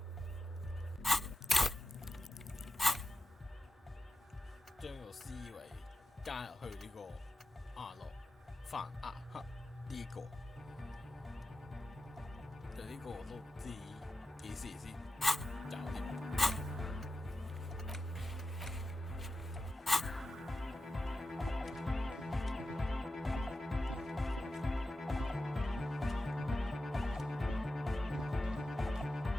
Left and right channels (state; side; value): normal; both; correlation 0.89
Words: 將個思維加入去呢個亞諾范亞克呢個，就呢個我都唔知幾時先搞掂。